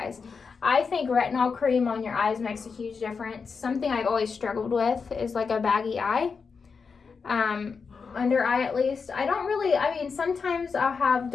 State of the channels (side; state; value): right; quieter; 5.3 dB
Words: I think retinol cream on your eyes makes a huge difference. Something I've always struggled with is like a baggy eye. Under eye at least. I mean, sometimes I'll have